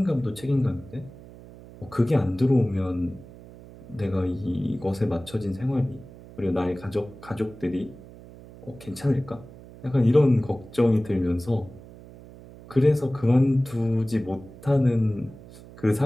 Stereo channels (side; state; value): right; noise; hum, 19 dB below the sound